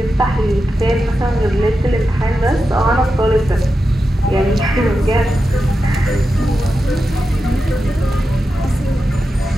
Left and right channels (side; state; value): both; normal; correlation 0.90